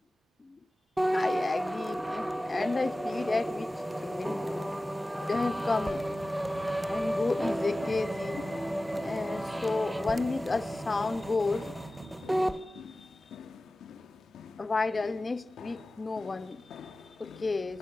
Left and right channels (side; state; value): both; normal; correlation 0.96